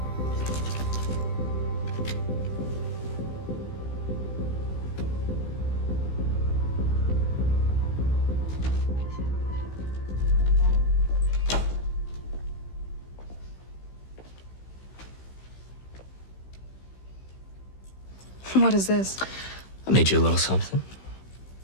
What is this? I made you a little something.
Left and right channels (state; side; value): late; right; 15 ms